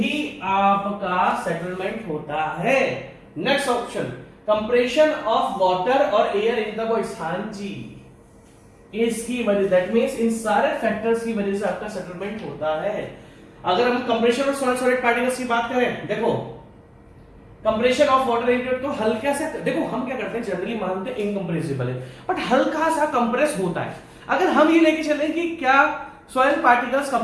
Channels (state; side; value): identical; both; correlation 1.00